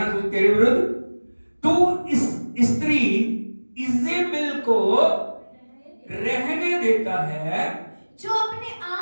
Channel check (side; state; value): both; inverted; correlation -1.00